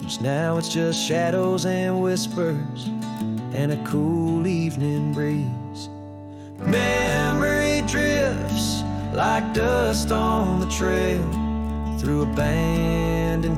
Now it's just shadows and whispers and a cool evening breeze. Memory drifts like dust on the trail, through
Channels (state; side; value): identical; both; correlation 1.00